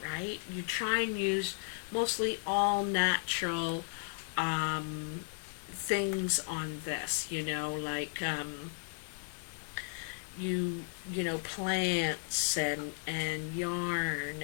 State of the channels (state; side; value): silent; right; 55 dB below the other